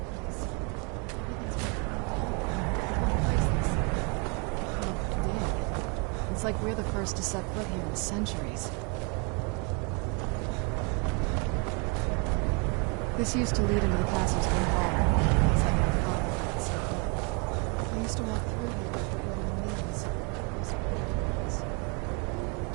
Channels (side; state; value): left; quieter; 33.6 dB